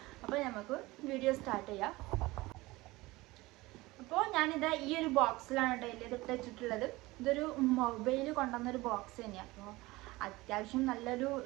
അപ്പോൾ നമുക്ക് വീഡിയോ സ്റ്റാർട്ട് ചെയ്യാം. അപ്പോൾ ഞാനിത് ഈ ഒരു ബോക്സിലാണ് കേട്ടോ ഇതിട്ട് വെച്ചിട്ടുള്ളത്. ഇതൊരു മൊബൈൽ കൊണ്ടുവന്നൊരു ബോക്സ് തന്നെയാണ്. അപ്പോൾ അത്യാവശ്യം നല്ലൊരു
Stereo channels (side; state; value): left; quieter; 20.5 dB